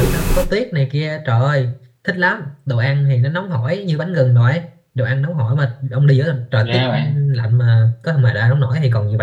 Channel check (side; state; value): both; identical; correlation 1.00